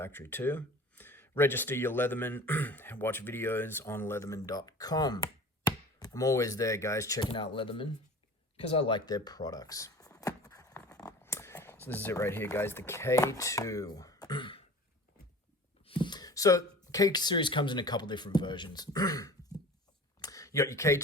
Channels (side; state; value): both; normal; correlation 0.40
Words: too. Register your Leatherman. Watch videos on leatherman.com. I'm always there, guys, checking out Leatherman because I like their products. So this is it right here, guys, the K2. So K series comes in a couple different versions. You got your